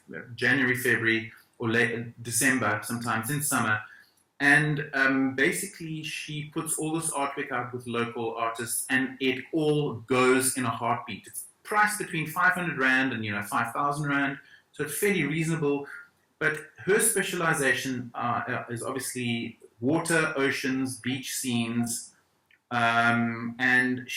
January, February, or late December, sometimes in summer. And basically she puts all this artwork out with local artists, and it all goes in a heartbeat. It's priced between 500 Rand and 5,000 Rand, so it's fairly reasonable. But her specialization is obviously water, oceans, beach scenes, and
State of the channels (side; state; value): both; identical; correlation 1.00